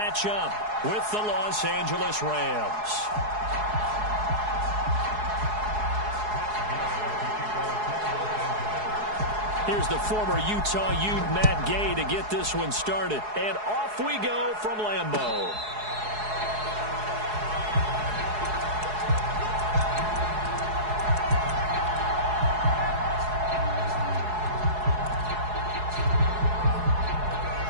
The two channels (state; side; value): late; left; 4.7 ms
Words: up with the Los Angeles Rams. Here's the former Utah Ute Matt Gay to get this one started. And off we go from Lambeau.